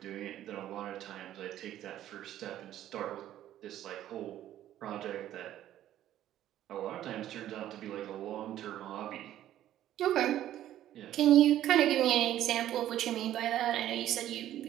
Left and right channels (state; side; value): quieter; left; 12.5 dB